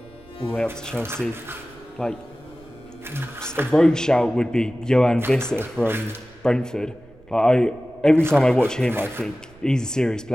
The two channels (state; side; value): noise; right; rumble, 26 dB below the sound